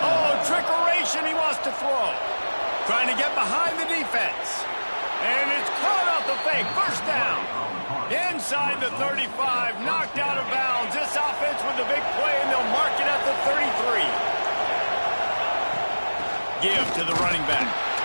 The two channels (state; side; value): inverted; both; correlation -1.00